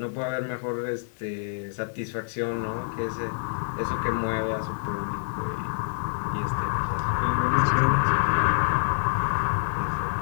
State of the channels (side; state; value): right; silent; digital silence